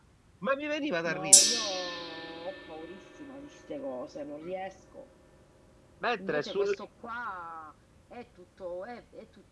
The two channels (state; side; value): identical; both; correlation 1.00